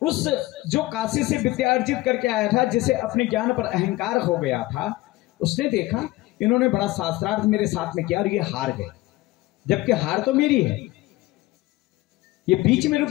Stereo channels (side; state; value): right; quieter; 19.0 dB